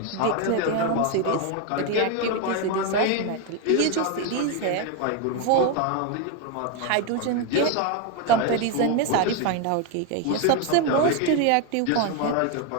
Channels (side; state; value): both; different; correlation 0.02